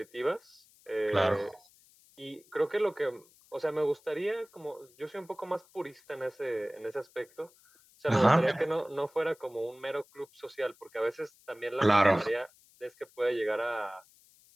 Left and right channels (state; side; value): noise; left; hiss, 28 dB below the sound